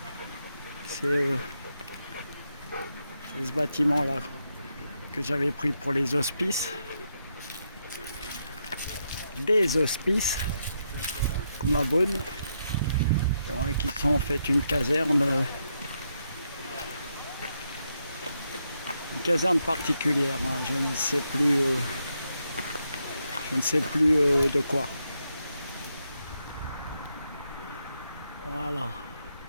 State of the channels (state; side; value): inverted; both; correlation -0.81